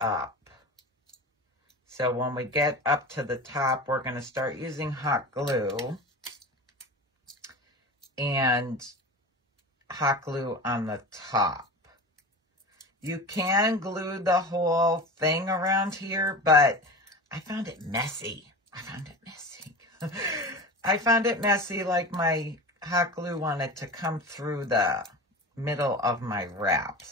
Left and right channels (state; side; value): normal; both; correlation 0.30